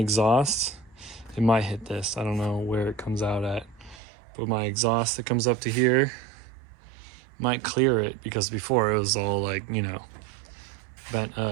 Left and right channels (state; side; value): drops out; left; at 4.0 s